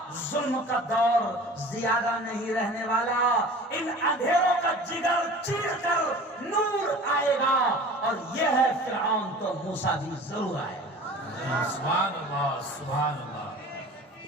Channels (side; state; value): both; normal; correlation 0.41